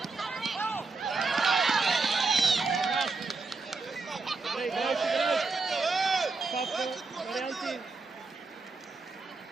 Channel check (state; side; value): quieter; left; 4.0 dB